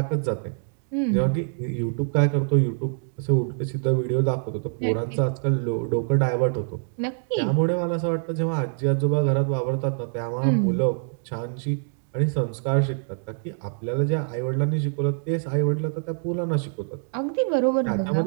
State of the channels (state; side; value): silent; left; digital silence